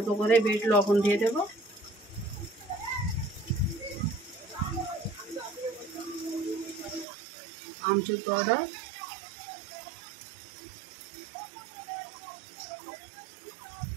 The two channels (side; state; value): left; drops out; at 7.1 s